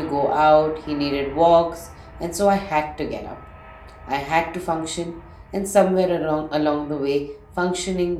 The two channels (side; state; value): both; identical; correlation 1.00